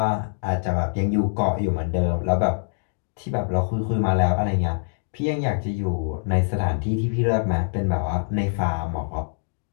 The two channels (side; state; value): right; silent; digital silence